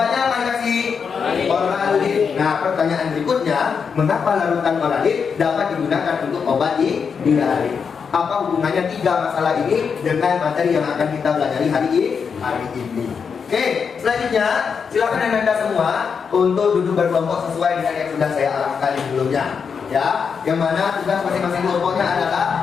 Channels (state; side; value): quieter; right; 6.2 dB